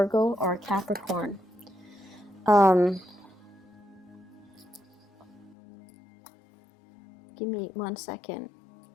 or Capricorn. Give me 1 second.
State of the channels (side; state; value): right; drops out; at 5.6 s